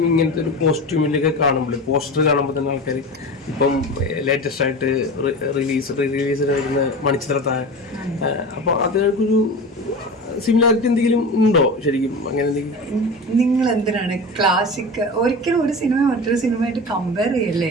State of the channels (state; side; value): normal; both; correlation 0.30